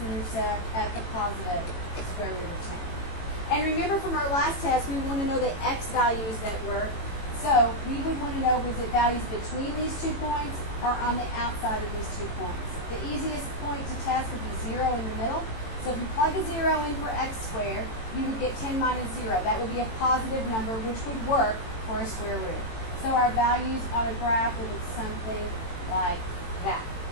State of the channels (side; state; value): right; late; 18 ms